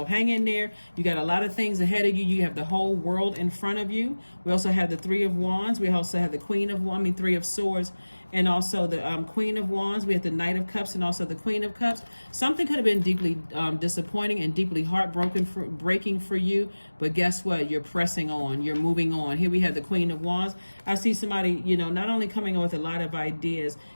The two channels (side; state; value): both; inverted; correlation -1.00